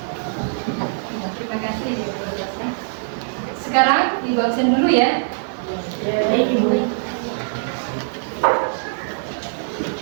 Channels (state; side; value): silent; left; 64 dB below the other